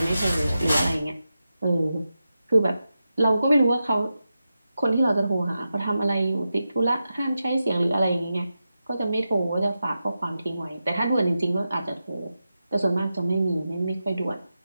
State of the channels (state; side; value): inverted; both; correlation -0.90